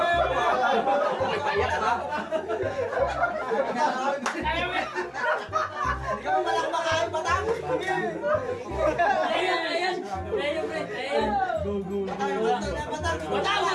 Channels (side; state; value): both; identical; correlation 1.00